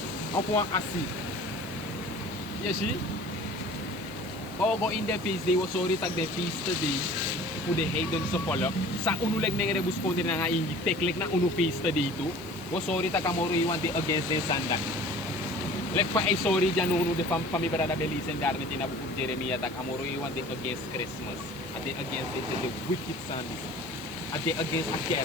Ang puang asi. Yeshi. Go in the feast day, was sorry tag the feast day. Pude heidon sa follow. Sa unuleg nang rebus ko din nga ingi teklik na unu feast dito. Was sorry tag amoro iwan di against den sanda. Lek pa ay sorry dyan uno de pamibara da belisen darne tinabukog Jeremiah tag amoro iwan di against Christmas. At they against the wicked sons. At they against a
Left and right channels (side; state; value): right; noise; hiss, 20 dB below the sound